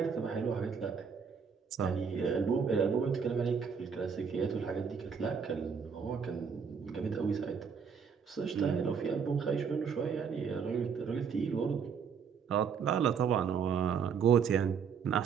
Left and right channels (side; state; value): left; quieter; 6.4 dB